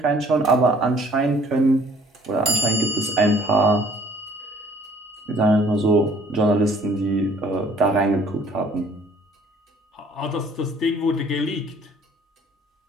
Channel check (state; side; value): normal; both; correlation 0.57